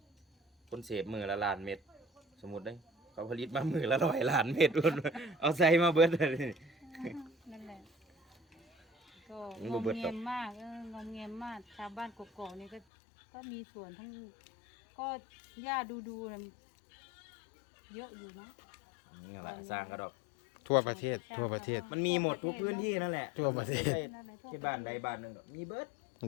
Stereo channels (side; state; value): right; drops out; at 12.8 s